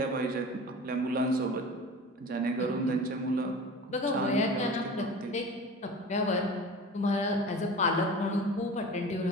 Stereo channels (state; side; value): normal; both; correlation 0.37